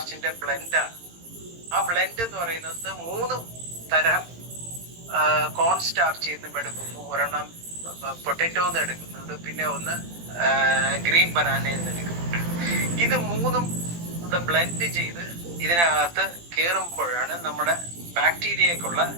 ബ്ലെൻഡാണ്. ആ ബ്ലെൻഡ് എന്ന് പറയുന്നത് 3 തരം കോൺ സ്റ്റാർച്ച് നിന്നും എടുക്കുന്നു, ഒരെണ്ണം പൊട്ടറ്റോന്ന് എടുക്കുന്നുണ്ട്, പിന്നെ ഒന്ന് ഗ്രീൻ ബനാനയിൽ നിന്ന് എടുക്കുന്നുണ്ട്. ഇത് 3ഉം ബ്ലെൻഡ് ചെയ്ത് ഇതിനകത്ത് കയറുമ്പോഴാണ് നമ്മുടെ ബാക്ടീരിയക്കുള്ള,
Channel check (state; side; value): late; left; 17 ms